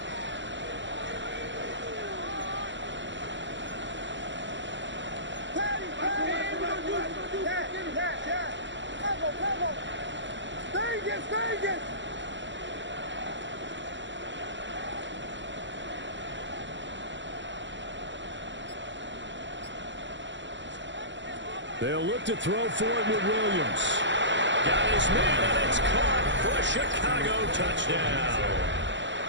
They'll look to throw for it with Williams. Got his man, and it's caught for a Chicago touchdown.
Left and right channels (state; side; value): late; left; 0.54 ms